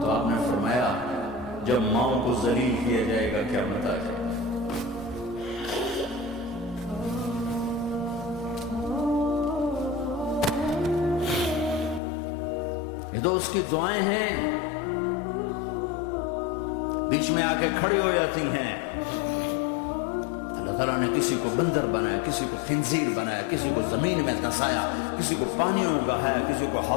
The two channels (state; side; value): drops out; right; at 12.0 s